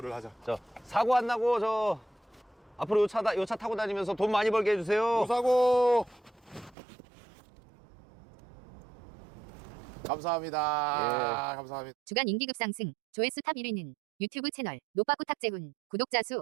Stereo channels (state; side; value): drops out; left; at 6.8 s